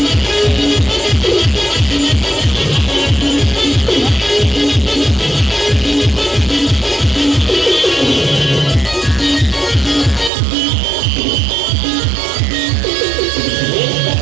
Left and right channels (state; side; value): drops out; left; at 10.3 s